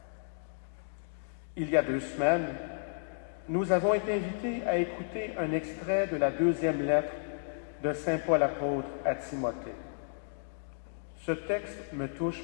Il y a 2 semaines, nous avons été invités à écouter un extrait de la 2e lettre de Saint Paul apôtre à Timothée. Ce texte me touche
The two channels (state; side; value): silent; right; digital silence